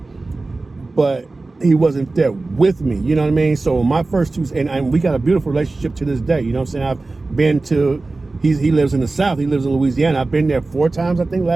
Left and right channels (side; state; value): left; quieter; 3.4 dB